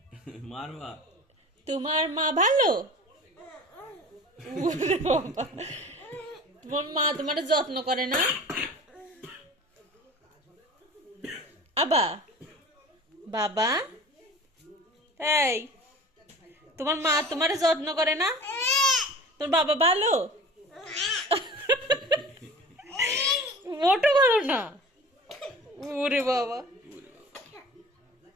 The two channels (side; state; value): both; normal; correlation 0.40